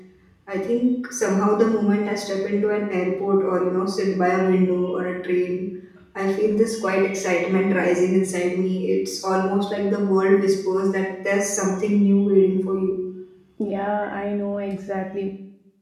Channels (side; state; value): both; identical; correlation 1.00